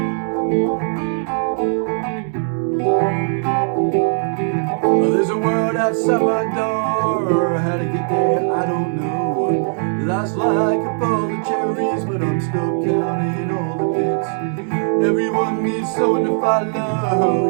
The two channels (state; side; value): silent; left; digital silence